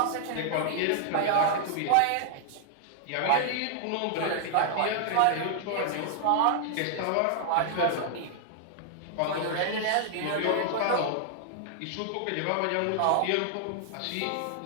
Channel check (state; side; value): different; both; correlation -0.01